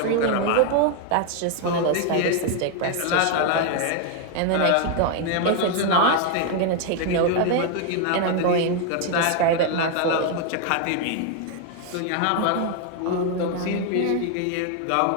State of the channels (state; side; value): different; both; correlation 0.01